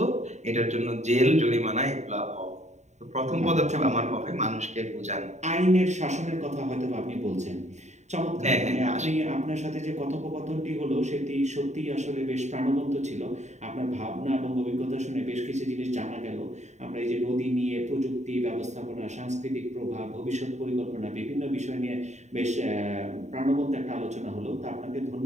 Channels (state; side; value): late; left; 0.34 ms